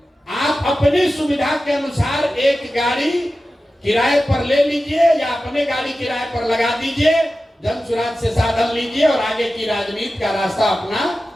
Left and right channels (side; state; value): both; normal; correlation 0.94